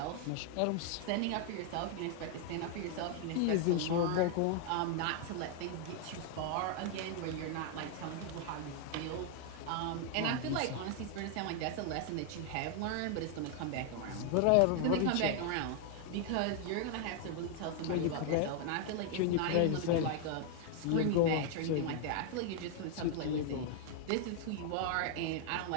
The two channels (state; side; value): different; both; correlation 0.00